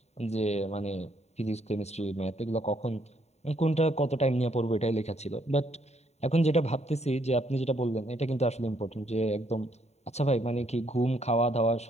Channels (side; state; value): right; late; 0.32 ms